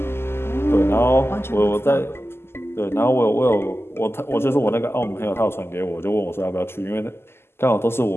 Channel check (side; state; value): right; late; 0.12 ms